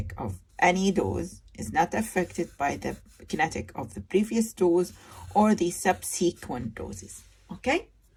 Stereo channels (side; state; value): both; identical; correlation 1.00